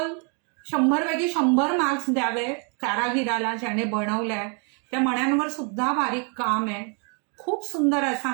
100 पैकी 100 मार्क्स द्यावे कारागिराला ज्याने बनवलाय. त्या मण्यांवर सुद्धा बारीक काम आहे. खूप सुंदर असा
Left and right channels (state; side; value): quieter; left; 38.1 dB